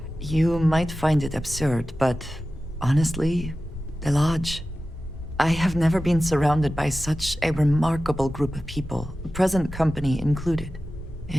You might find it absurd, but honestly, the Lodge. I have never been surrounded by such a remarkable group of people, present company included.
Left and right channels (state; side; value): normal; both; correlation 0.94